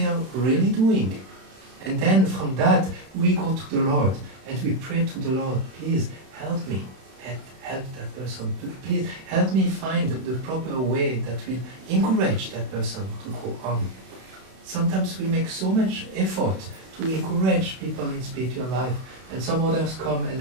are really doing. And then from that, we go to the Lord and we pray to the Lord, please help me, help that person. Please help me find the proper way that will encourage that person to go on. Sometimes we make so much effort to encourage people in spiritual life, and some others come and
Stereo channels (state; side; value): late; left; 32 ms